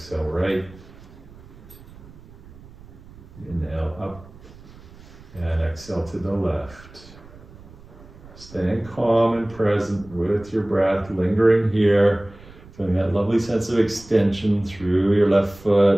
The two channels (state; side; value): noise; right; rumble, 21 dB below the sound